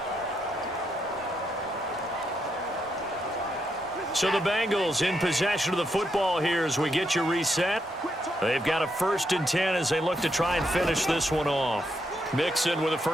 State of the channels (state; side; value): normal; both; correlation 0.80